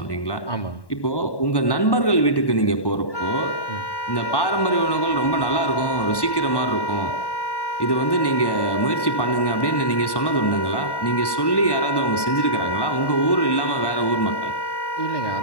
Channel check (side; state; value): right; late; 1.1 ms